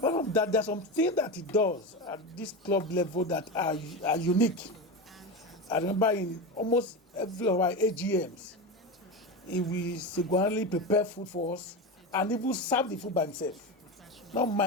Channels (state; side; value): normal; both; correlation 0.20